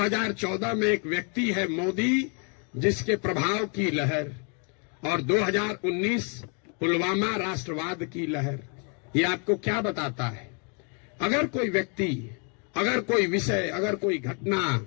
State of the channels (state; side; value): quieter; right; 38.0 dB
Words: में एक व्यक्ति है मोदी जिसके प्रभाव की लहर, और 2019 पुलवामा राष्ट्रवाद की लहर। ये आपको क्या बताता है? अगर कोई व्यक्ति, अगर कोई विषय, अगर कोई घटना,